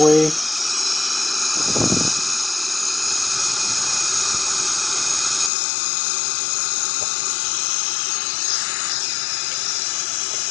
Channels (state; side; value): drops out; right; at 5.5 s